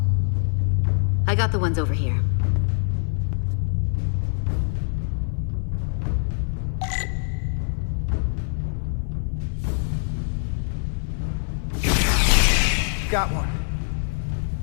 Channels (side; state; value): right; silent; digital silence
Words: I got the ones over here. Got one.